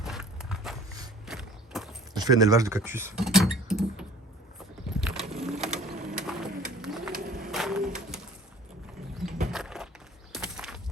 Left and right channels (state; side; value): normal; both; correlation 0.49